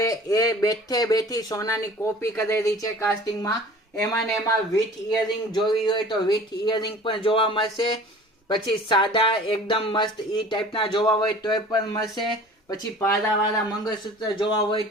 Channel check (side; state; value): both; normal; correlation 0.45